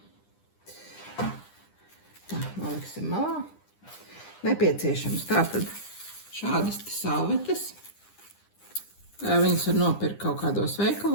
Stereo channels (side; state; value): right; late; 9.9 ms